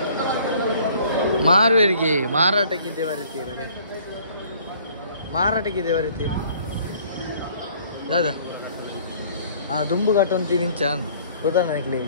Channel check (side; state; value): both; inverted; correlation -0.55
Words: ಮಾರುವರಿಗೆ ಮಾರಾಟಕ್ಕಿದ್ದೆ ಬರುತ್ತೀರಡೆ ಮಾರಾಟಕ್ಕಿದ್ದೆ ಬರುತ್ತೀರಿ ದಾದಾ ದುಂಬು ಕಟ್ಟೊಂದು ವಿಂಚಾನ್ ಗೊತ್ತಾ ನನಗೆ